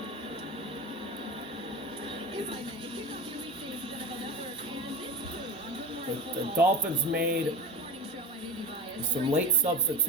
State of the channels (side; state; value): both; normal; correlation 0.25